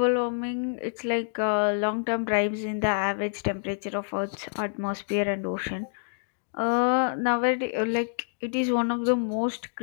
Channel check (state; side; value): silent; right; digital silence